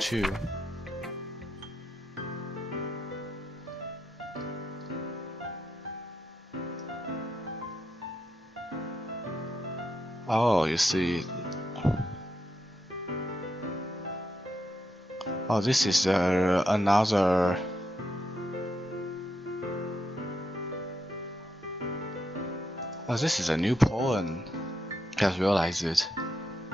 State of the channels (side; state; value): both; normal; correlation 0.82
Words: Oh, you see. Oh, this is another. Oh, this is a new poem. Just realized it.